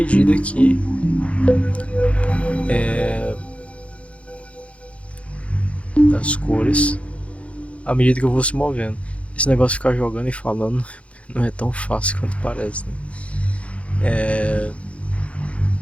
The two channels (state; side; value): late; right; 0.063 ms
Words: que das cores à medida que eu vou se movendo. Esse negócio de ficar jogando e falando não é tão fácil quanto parece, né?